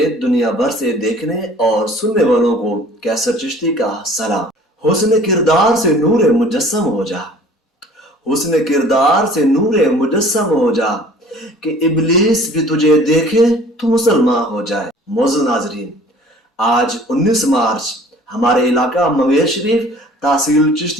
دنیا بھر سے دیکھنے اور سننے والوں کو کیسر چشتی کا سلام۔ حسن کردار سے نور مجسم ہو جا، حسن کردار سے نور مجسم ہو جا، کہ ابلیس بھی تجھے دیکھے تو مسلمان ہو جائے۔ معزز ناظرین، آج 19 مارچ ہمارے علاقہ منگیر شریف تحصیل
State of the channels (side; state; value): both; normal; correlation 0.49